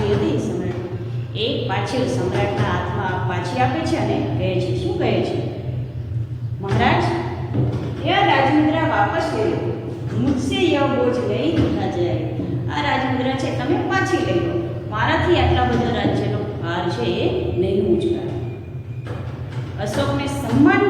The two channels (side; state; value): both; identical; correlation 1.00